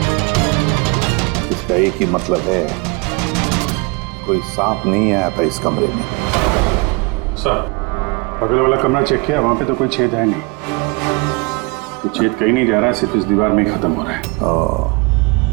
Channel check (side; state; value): left; quieter; 27.5 dB